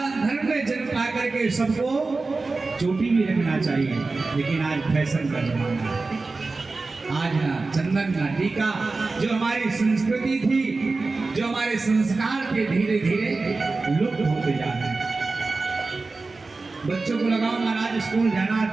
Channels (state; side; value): quieter; left; 3.7 dB